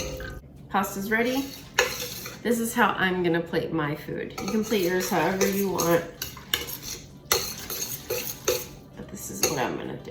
Pasta's ready. This is how I'm gonna plate my food. You can plate yours however you want, but this is what I'm gonna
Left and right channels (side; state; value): both; identical; correlation 1.00